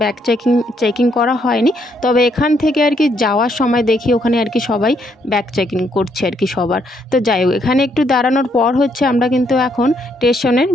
ব্যাগ চেকিং করা হয়নি, তবে এখান থেকে আর কি যাওয়ার সময় দেখি ওখানে আর কি সবাই ব্যাগ চেকিং করছে আর কি সবার। তো যাই হোক, এখানে একটু দাঁড়ানোর পর হচ্ছে আমরা কিন্তু এখন স্টেশনের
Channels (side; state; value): both; normal; correlation 0.73